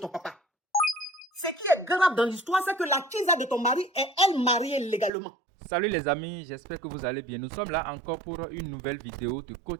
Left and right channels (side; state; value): left; drops out; at 5.1 s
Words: papa. Ce qui est grave dans l'histoire, c'est que la tisa de ton mari est elle mariée légalement. Salut les amis, j'espère que vous allez bien. Nous sommes là encore pour une nouvelle vidéo de